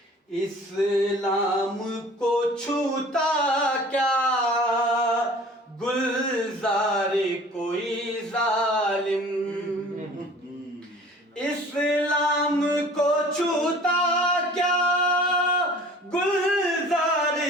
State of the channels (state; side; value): normal; both; correlation 0.47